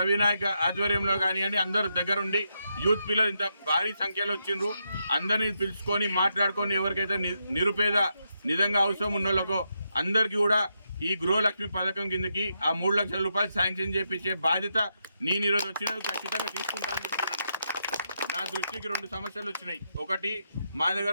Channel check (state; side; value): inverted; both; correlation -0.82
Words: ఆధ్వర్యంలో కానివ్వండి, అందరూ దగ్గరుండి యూత్ పిల్లలు ఇంత భారీ సంఖ్యలో వచ్చిండ్రు. అందరినీ పిలుచుకొని మాట్లాడుకొని ఎవరికైతే నిరుపేద నిజంగా అవసరం ఉన్న వాళ్ళకో అందరికీ కూడా ఈ గృహలక్ష్మి పథకం కిందకి ఆ 3 లక్షల రూపాయలు శాంక్షన్ చేపించే బాధ్యత నేను ఈరోజు వచ్చినది ఖచ్చితంగా తీసుకుంటానని చెప్తున్నాను. నా దృష్టికి 2 సమస్యలు వచ్చినాయి. ఒకటి, మా